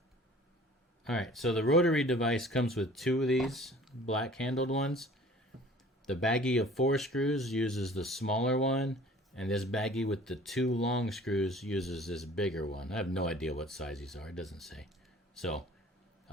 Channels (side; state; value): both; normal; correlation 0.49